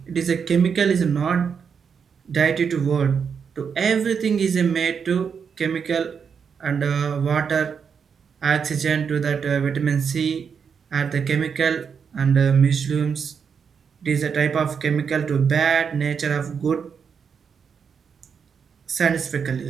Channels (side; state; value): left; quieter; 6.5 dB